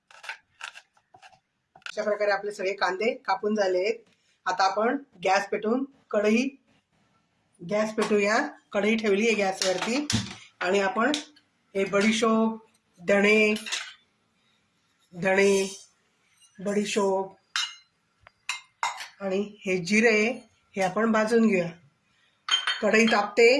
अशा प्रकारे आपले सगळे कांदे कापून झाले आहेत. आता आपण गॅस पेटूया. कढई ठेवली आहे गॅसवरती आणि आपण हे बडीशोप, धणे, बडीशोप आणि हे जिरे हे आपण भाजून घेऊया. कढई तापते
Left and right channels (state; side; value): identical; both; correlation 1.00